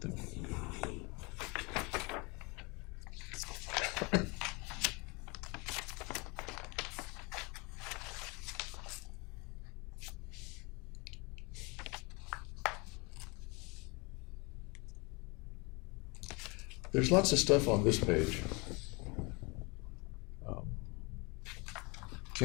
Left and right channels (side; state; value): right; quieter; 28.1 dB